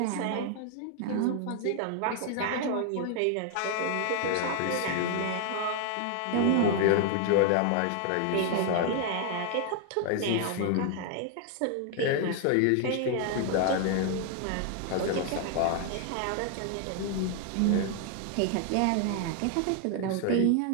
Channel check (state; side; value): different; both; correlation 0.00